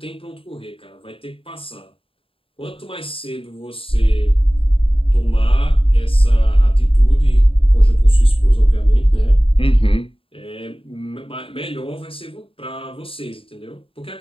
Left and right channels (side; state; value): right; late; 0.26 ms